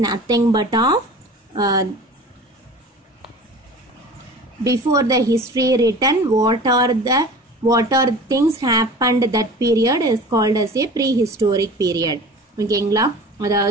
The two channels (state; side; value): normal; both; correlation 0.40